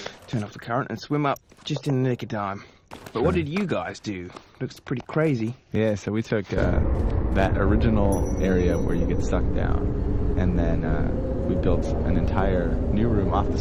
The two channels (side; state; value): both; identical; correlation 1.00